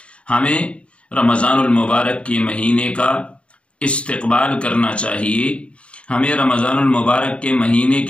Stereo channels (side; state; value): right; late; 0.061 ms